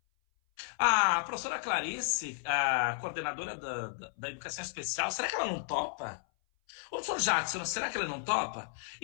A professora Clarice, a coordenadora da educação especial, será que ela não topa? O professor Jackson, será que ele não topa?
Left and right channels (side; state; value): right; silent; 56 dB below the other